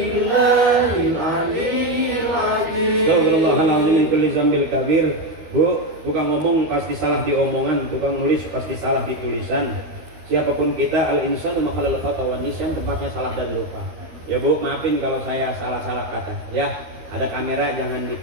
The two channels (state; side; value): late; left; 13 ms